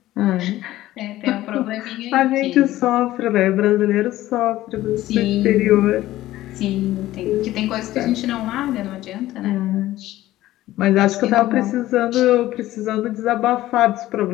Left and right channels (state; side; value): quieter; right; 15.3 dB